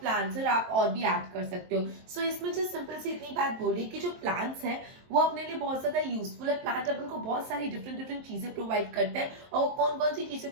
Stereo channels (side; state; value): left; late; 23 ms